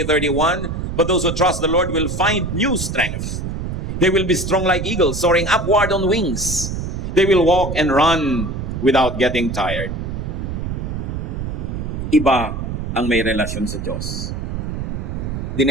but those who trust the Lord will find new strength. They will be strong like eagles, soaring upward on wings. They will walk and run without getting tired. Iba ang may relasyon sa Diyos.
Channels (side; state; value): right; noise; rumble, 4 dB below the sound